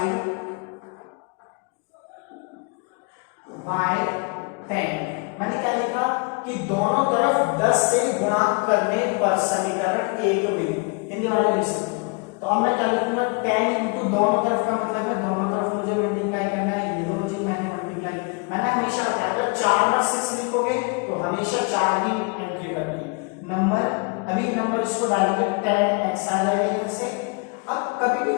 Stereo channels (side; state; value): right; quieter; 32.6 dB